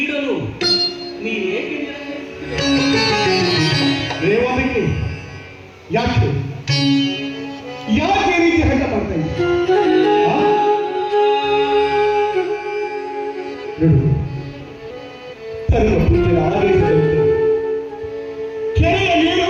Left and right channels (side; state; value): both; identical; correlation 1.00